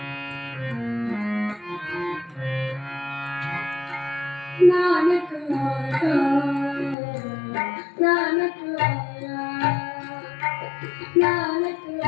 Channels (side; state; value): right; drops out; at 7.0 s